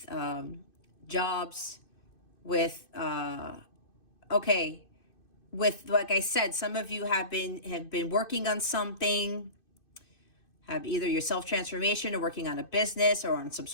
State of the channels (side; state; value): right; late; 2.6 ms